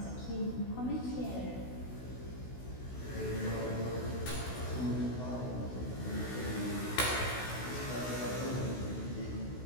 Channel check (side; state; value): right; late; 16 ms